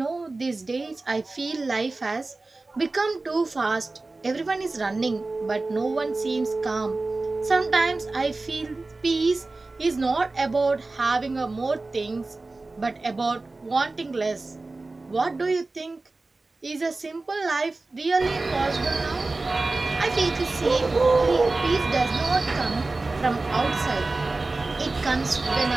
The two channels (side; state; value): left; quieter; 3.3 dB